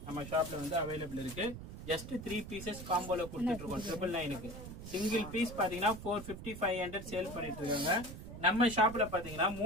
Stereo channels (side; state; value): right; noise; rumble, 11 dB below the sound